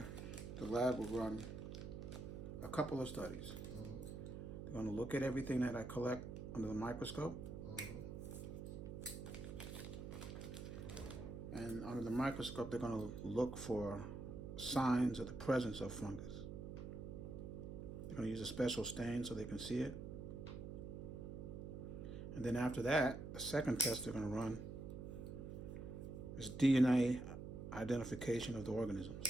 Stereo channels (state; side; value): noise; right; hum, 7 dB below the sound